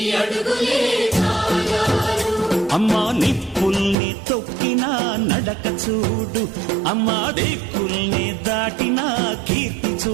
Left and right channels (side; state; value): left; drops out; at 4.0 s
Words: అమ్మా నిప్పుల్ని తొక్కిన నడక చూడు, అమ్మా దిక్కుల్ని దాటిన కీర్తి